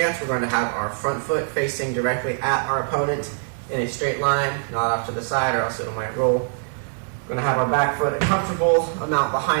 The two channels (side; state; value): left; silent; 62 dB below the other